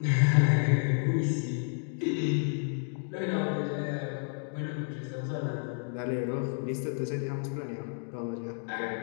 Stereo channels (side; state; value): right; silent; 55 dB below the other